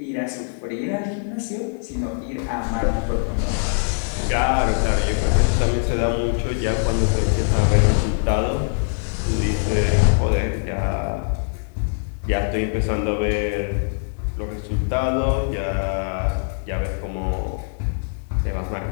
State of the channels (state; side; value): silent; right; digital silence